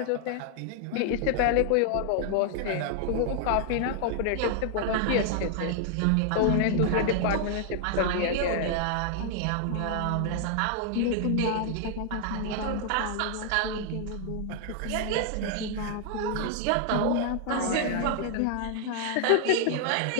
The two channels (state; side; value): different; both; correlation 0.00